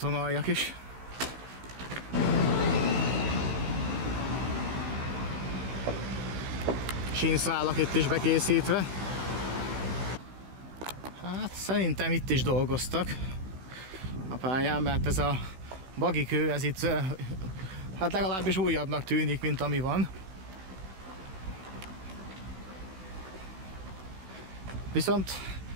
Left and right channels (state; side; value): late; left; 16 ms